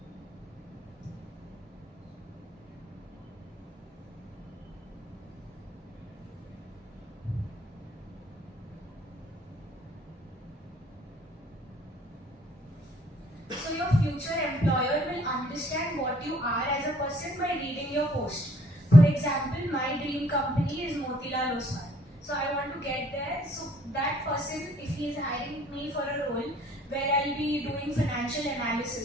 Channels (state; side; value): normal; both; correlation 0.61